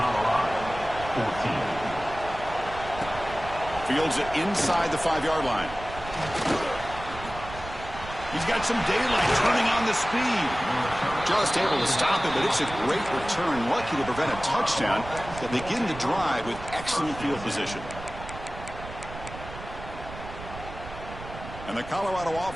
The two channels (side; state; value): right; noise; rumble, 13 dB below the sound